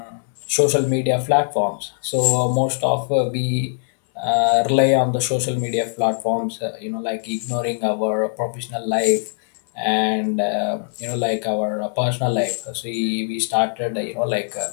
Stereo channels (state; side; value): silent; right; 65 dB below the other